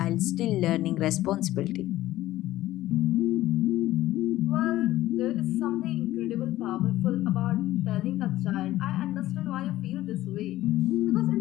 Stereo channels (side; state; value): right; quieter; 15.4 dB